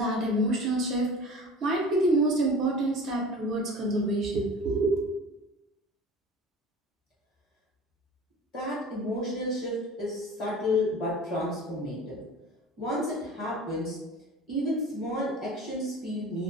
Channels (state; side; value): normal; both; correlation 0.39